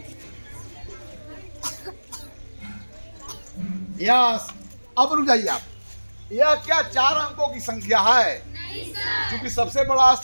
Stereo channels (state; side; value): inverted; both; correlation -1.00